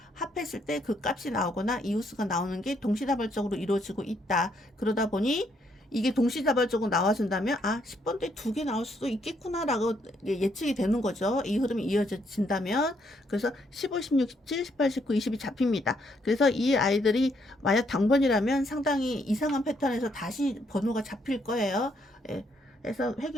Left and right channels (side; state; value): both; normal; correlation 0.73